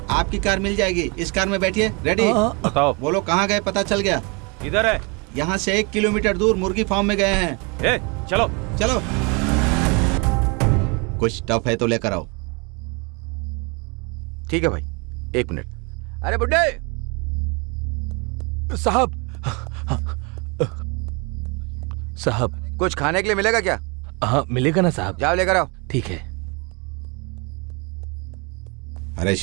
आपकी कार मिल जाएगी, इस कार में बैठिए। रेडी? बताओ। वो लोग कहाँ गए पता चल गया? इधर है। यहाँ से 1 किलोमीटर दूर मुर्गी फार्म में गए हैं। चलो चलो। कुछ टफ है तो लेकर आओ। ठीक है भाई, 1 मिनट। अरे बुड्ढे साहब। साहब कुछ खाने के लिए मिलेगा क्या? हाँ मिलेगा ना साहब। जाओ लेकर आओ। ठीक है। अरे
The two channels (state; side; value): quieter; left; 31.0 dB